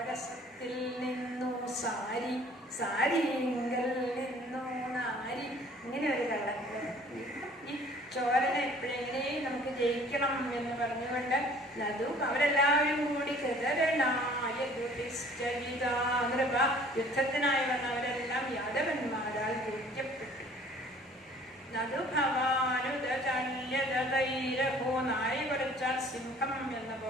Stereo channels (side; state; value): both; normal; correlation 0.53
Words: നിന്നു സാരി, സാരിങ്കൽ നിന്നു നാരി. ഇങ്ങനെ ഒരു കള്ളൻ. ഈ ചോരനെ എപ്പോഴെങ്ങനെയും നമുക്ക് ജയിക്കണം എന്ന് പറഞ്ഞുകൊണ്ട് നദു അവരെല്ലാവരും കൂടി യുദ്ധത്തിനായി വന്ന അവരെല്ലാം യാദവന്മാരാൽ ജയിക്കപ്പെട്ടു. നദുഭവാനുദചല്യതൈരഹോ. നായി കുറച്ചാൽ സിംഹം എന്ന